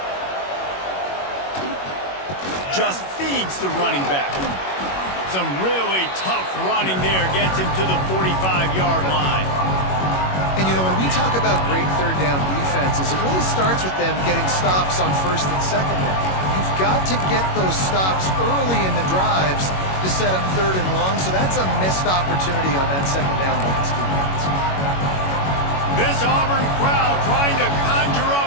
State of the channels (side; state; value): right; late; 21 ms